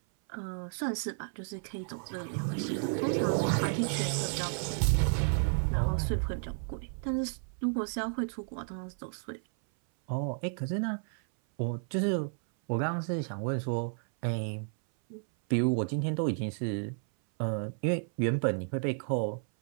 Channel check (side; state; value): left; silent; 56 dB below the other